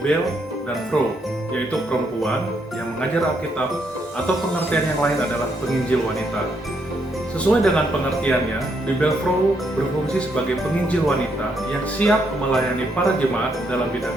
dan Pro, yaitu perempuan yang mengajar Alkitab, atau pengertian yang lain adalah penginjil wanita. Sesuai dengan pengertiannya, Bibel Pro berfungsi sebagai penginjil wanita yang siap melayani para jemaat dalam bidang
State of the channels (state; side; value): normal; both; correlation 0.75